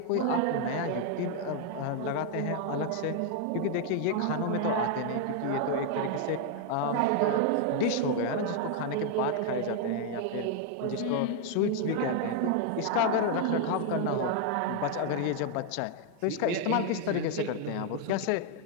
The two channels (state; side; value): different; both; correlation 0.00